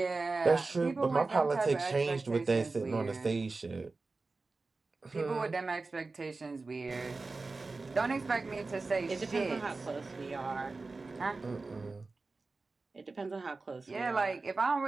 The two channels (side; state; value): left; quieter; 3.7 dB